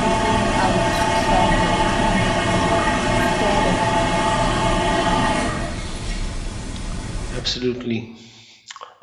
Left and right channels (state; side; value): identical; both; correlation 1.00